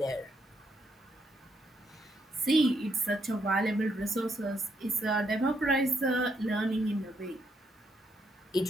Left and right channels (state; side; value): normal; both; correlation 0.76